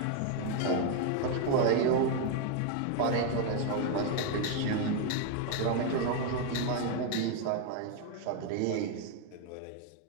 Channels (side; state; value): both; different; correlation 0.01